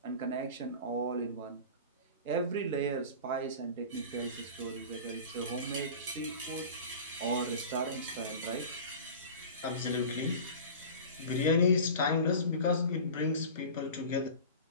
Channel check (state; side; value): inverted; both; correlation -0.36